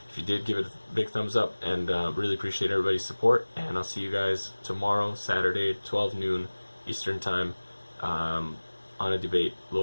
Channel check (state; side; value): inverted; both; correlation -1.00